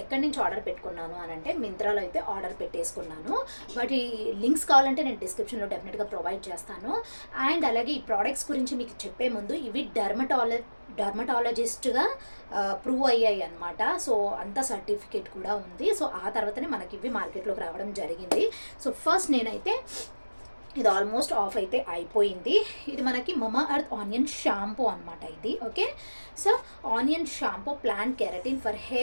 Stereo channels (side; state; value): both; inverted; correlation -1.00